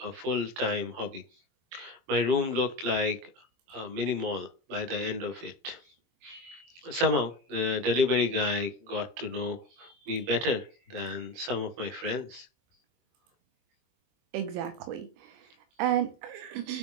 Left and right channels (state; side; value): late; left; 23 ms